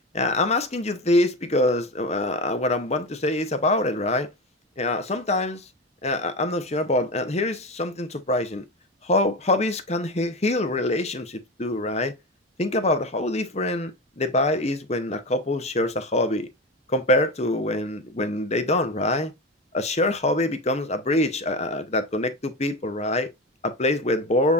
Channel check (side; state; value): both; normal; correlation 0.22